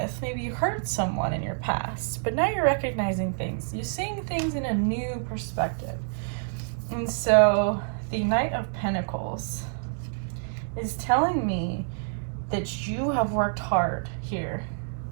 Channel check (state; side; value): silent; left; digital silence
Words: Maybe you hurt someone in your past, but now you're recognizing things. You're seeing things in a new perspective. And so the Knight of Pentacles is telling me that you have worked hard here.